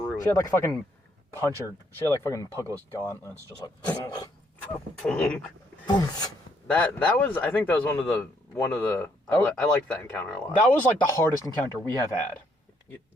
She had like fucking puncher. She had like fucking Puggless gauntlets, just like. that was. I think that was one of the. I liked that encounter a lot. That was like the hardest encounter we have had.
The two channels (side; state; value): both; normal; correlation 0.70